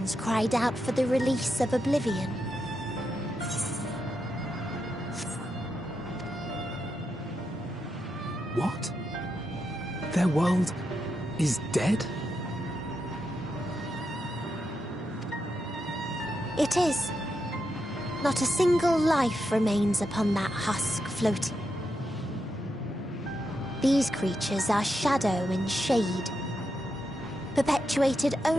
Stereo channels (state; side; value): normal; both; correlation 0.85